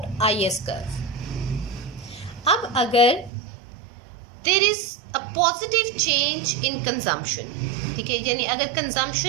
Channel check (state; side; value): drops out; left; at 3.3 s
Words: IS curve. अब अगर there is a positive change in consumption, ठीक है, यानी अगर